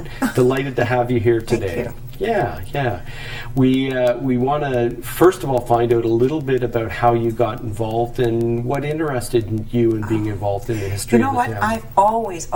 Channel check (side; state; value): both; identical; correlation 1.00